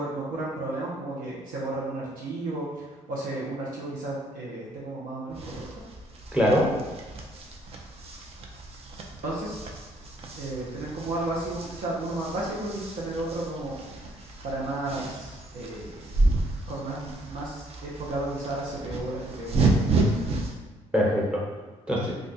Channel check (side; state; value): both; normal; correlation 0.66